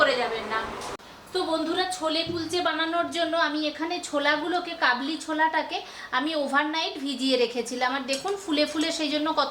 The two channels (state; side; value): identical; both; correlation 1.00